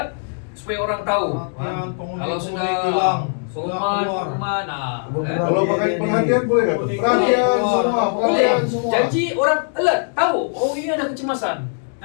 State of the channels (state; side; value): silent; right; digital silence